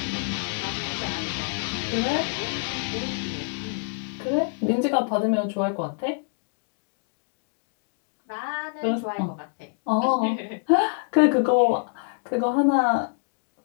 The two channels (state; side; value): silent; right; digital silence